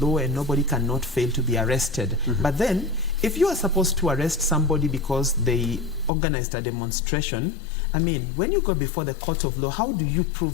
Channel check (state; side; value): drops out; right; at 6.1 s